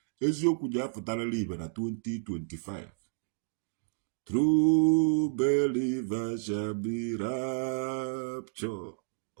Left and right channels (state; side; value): silent; left; digital silence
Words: eziokwu ji apụtarala ibe na 2025. True believers shall be raptured